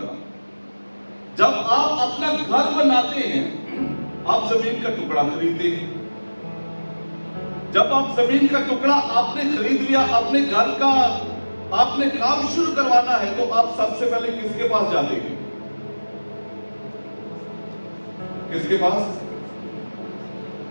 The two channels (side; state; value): both; inverted; correlation -1.00